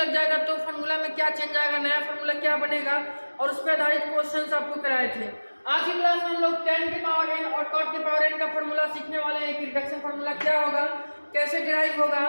जाएगा तो फार्मूला में क्या चेंज आएगा, नया फार्मूला क्या बनेगा, और उस पर आधारित क्वेश्चंस आपको कराए थे। आज की क्लास में हम लोग tan के पावर n और cot के पावर n का फार्मूला सीखने वाले हैं कि रिडक्शन फार्मूला क्या होगा, कैसे डिराइव होगा,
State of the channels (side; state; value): both; inverted; correlation -1.00